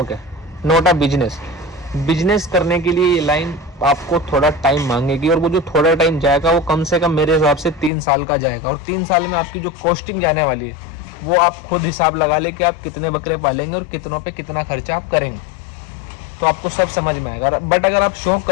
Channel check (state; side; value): drops out; right; at 7.9 s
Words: है, नॉट अ बिजनेस। बिजनेस करने के लिए ये लाइन आपको थोड़ा टाइम मांगेगी, और वो जो थोड़ा टाइम जाएगा वो कम से कम मेरे हिसाब से 3 साल का जाएगा। और 3 साल में आपकी जो कॉस्टिंग जाने वाली है वो आप खुद हिसाब लगा ले कि आप कितने बकरे पालेंगे और कितनों पे कितना खर्चा आप करेंगे, तो आपको सब समझ में आएगा। बट अगर आप शौक